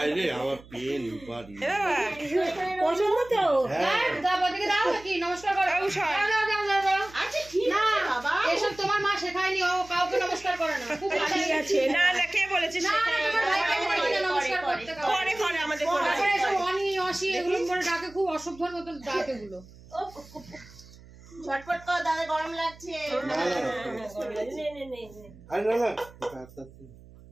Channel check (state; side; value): noise; right; hum, 21 dB below the sound